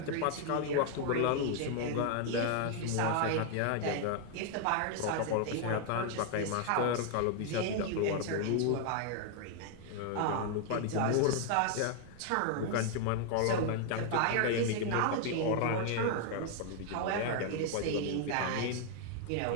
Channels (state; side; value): different; both; correlation 0.00